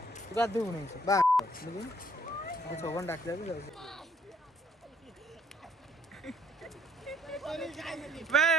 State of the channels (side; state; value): both; normal; correlation 0.63